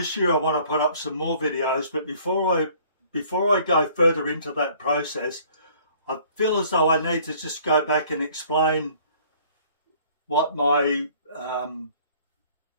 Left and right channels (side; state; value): both; inverted; correlation -0.55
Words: year I want to put up some more videos, but before I go further into that process, I feel as though I need to just go back and explain what